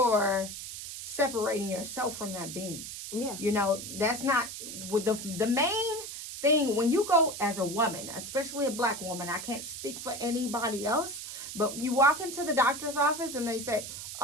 separating yourself from that being. Yeah. You know, that's not with the main thing. When you go as a woman, especially a Black woman, I can't speak for anybody else, but you walk into the doctor's office and they say,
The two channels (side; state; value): right; noise; hiss, 9 dB below the sound